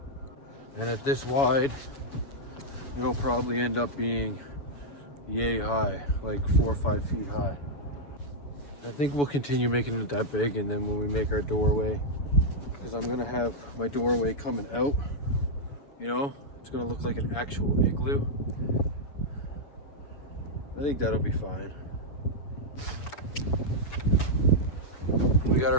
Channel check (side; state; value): right; late; 7.0 ms